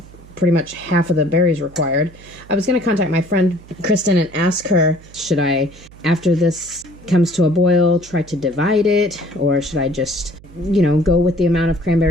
pretty much half of the berries required, I was going to contact my friend Kristin and ask her, should I, after this comes to a boil, try to divide it, or should I just, go with the amount of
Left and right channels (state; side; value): noise; right; hum, 22 dB below the sound